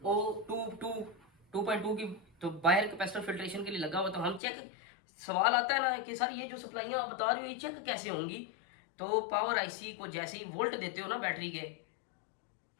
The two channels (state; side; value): drops out; right; at 4.4 s